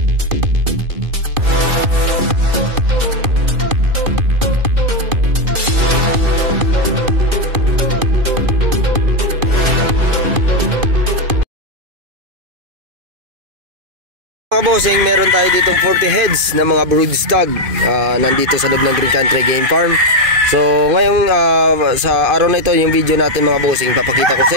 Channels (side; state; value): left; late; 2.5 ms